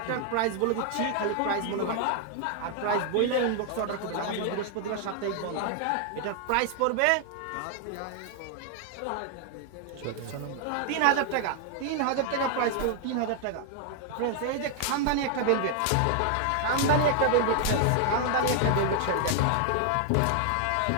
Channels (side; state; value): both; different; correlation 0.00